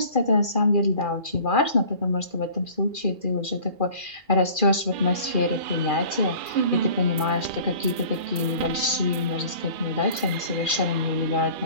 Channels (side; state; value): left; late; 2.4 ms